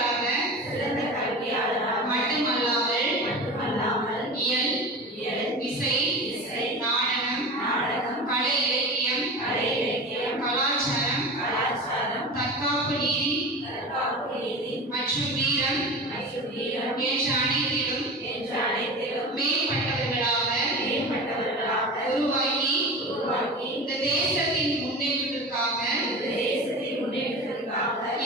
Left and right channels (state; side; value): normal; both; correlation 0.31